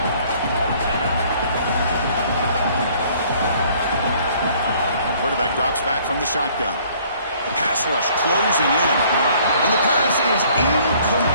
Quarterback drops back from the shotgun. The pass rush closing in. And the pass is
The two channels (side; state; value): both; inverted; correlation -0.59